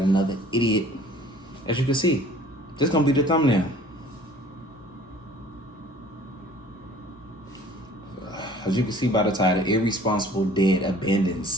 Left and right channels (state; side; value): normal; both; correlation 0.51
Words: another idiot. As you can see, this is gonna be the thumbnail. As you can see by the title, Irresponsible Dad Abandons